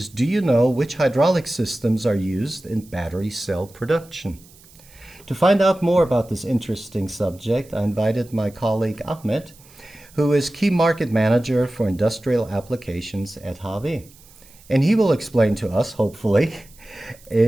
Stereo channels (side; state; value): right; noise; hiss, 25 dB below the sound